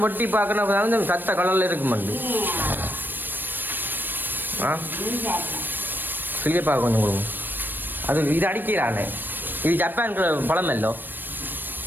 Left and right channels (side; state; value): left; late; 0.093 ms